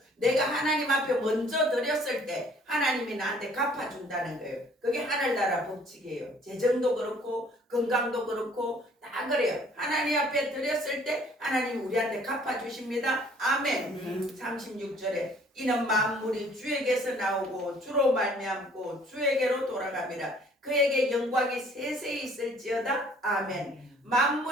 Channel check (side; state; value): both; normal; correlation 0.57